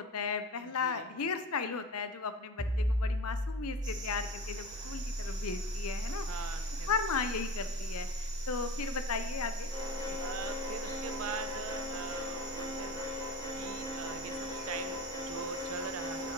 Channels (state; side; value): normal; both; correlation 0.32